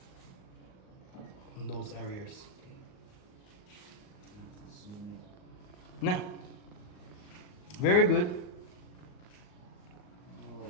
In those areas. No. Very good.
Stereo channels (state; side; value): late; right; 38 ms